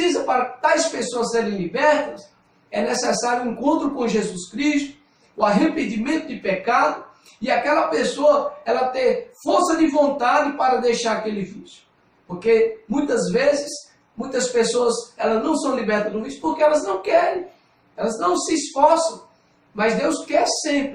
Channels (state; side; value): identical; both; correlation 1.00